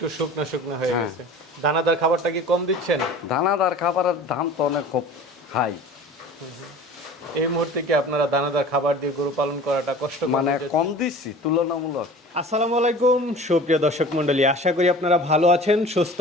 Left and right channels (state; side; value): normal; both; correlation 0.41